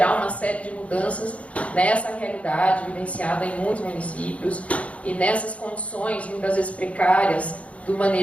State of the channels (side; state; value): right; late; 0.064 ms